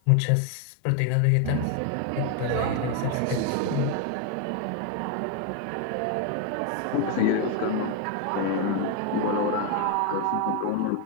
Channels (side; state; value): both; different; correlation 0.01